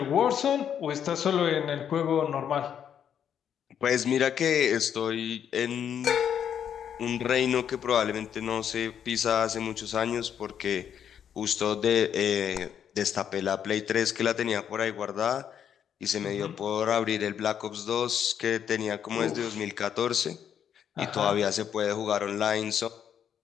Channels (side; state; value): right; quieter; 8.8 dB